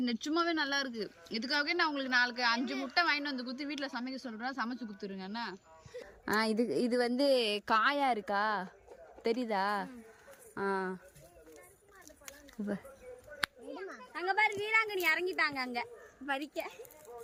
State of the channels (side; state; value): both; identical; correlation 1.00